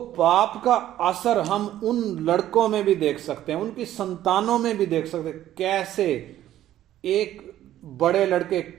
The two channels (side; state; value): left; quieter; 12.7 dB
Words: पाप का असर हम उन लड़कों में भी देख सकते हैं, उनकी संतानों में भी देख सकते हैं। कैसे एक बड़े लड़के